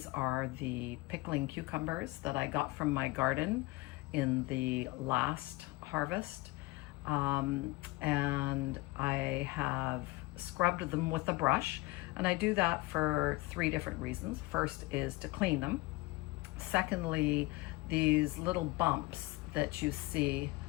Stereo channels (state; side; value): quieter; right; 21.9 dB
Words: are the pickling cucumbers that I got from my garden in the last harvest. And I have scrubbed them with a brush, and I do that for 3 different reasons. First is to clean them. Secondly, these little bumps that you see